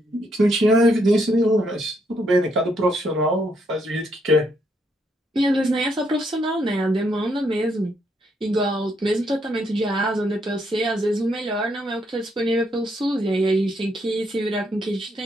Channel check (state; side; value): normal; both; correlation 0.75